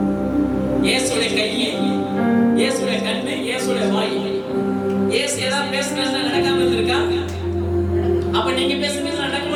இயேசுடைய கை, இயேசுடைய கண்ணு, இயேசுடைய வாய். இயேசு ஏதாவது பேசுறதுனா நடக்காம இருந்திருக்கா? அப்ப நீங்க பேசுறது நடக்குமா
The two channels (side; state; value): both; identical; correlation 1.00